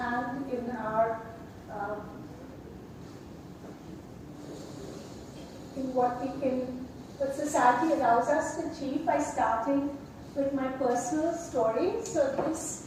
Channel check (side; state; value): both; identical; correlation 1.00